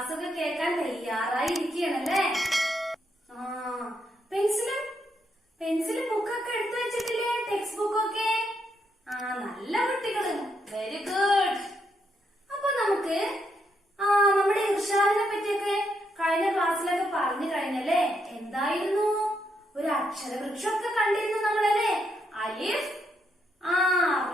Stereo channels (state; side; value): normal; both; correlation 0.78